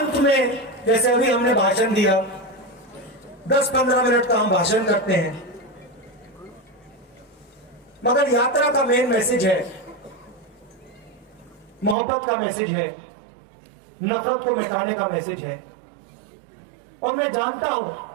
में जैसे अभी हमने भाषण दिया, 10-15 मिनट का हम भाषण करते हैं, मगर यात्रा का मेन मैसेज है, मोहब्बत का मैसेज है, नफरत को मिटाने का मैसेज है। और मैं जानता हूं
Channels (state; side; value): drops out; left; at 12.0 s